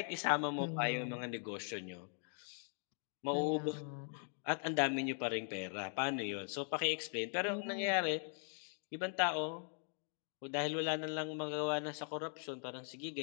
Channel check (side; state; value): right; silent; 51 dB below the other